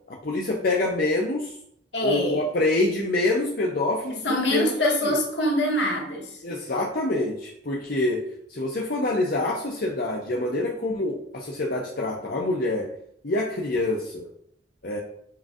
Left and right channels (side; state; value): both; normal; correlation 0.31